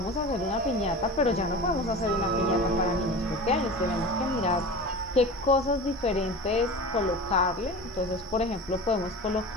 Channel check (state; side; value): normal; both; correlation 0.32